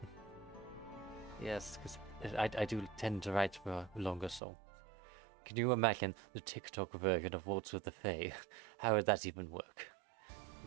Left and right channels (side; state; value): left; drops out; at 4.4 s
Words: Yes, because I do tend to write for longer songs. Can you imagine the TikTok version of Waltz with the Fae? How would that even work?